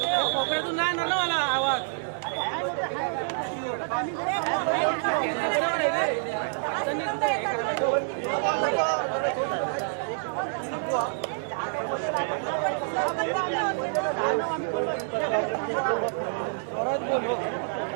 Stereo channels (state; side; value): silent; left; digital silence